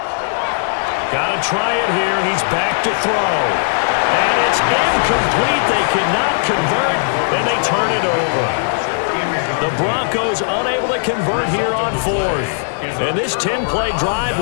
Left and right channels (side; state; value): right; silent; digital silence